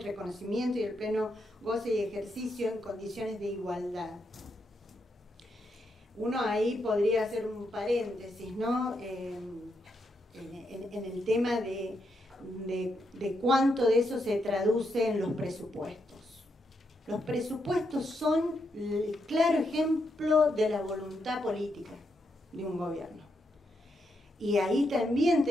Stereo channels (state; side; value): normal; both; correlation 0.81